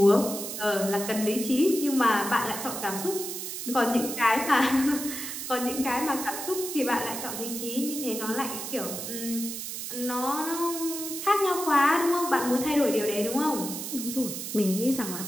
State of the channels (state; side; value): noise; right; hiss, 6 dB below the sound